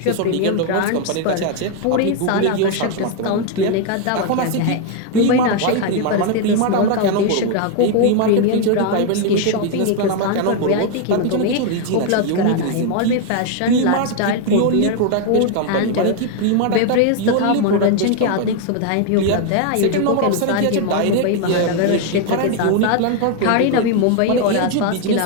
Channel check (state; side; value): different; both; correlation 0.01